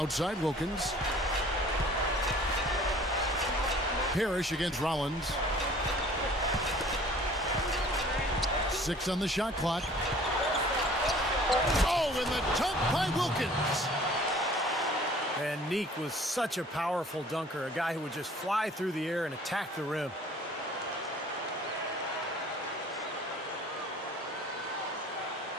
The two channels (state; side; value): normal; both; correlation 0.51